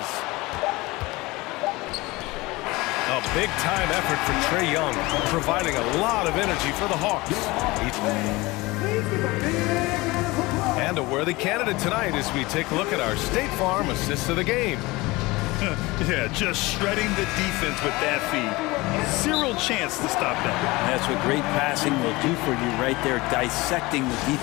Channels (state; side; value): quieter; right; 22.0 dB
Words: A big-time effort for Trae Young, providing a lot of energy for the Hawks. And a worthy candidate tonight as we take a look at our State Farm assists of the game. Yeah, just shredding the defense with that feed. Zero chance to stop that. That's what great passing will do for you right there, dissecting the